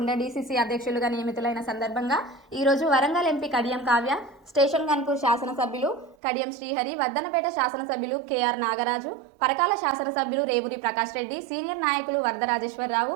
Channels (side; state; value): left; drops out; at 6.2 s